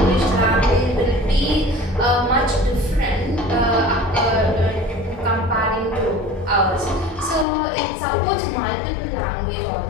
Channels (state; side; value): drops out; right; at 7.5 s